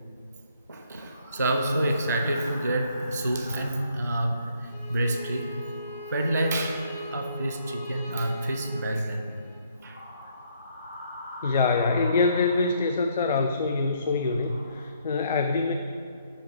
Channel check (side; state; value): both; inverted; correlation -0.68